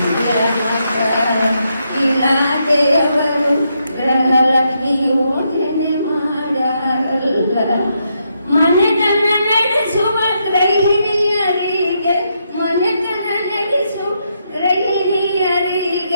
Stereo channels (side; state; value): both; inverted; correlation -0.79